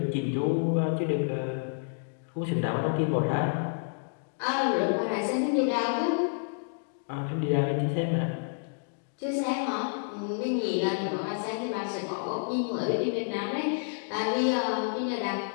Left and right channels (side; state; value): right; silent; digital silence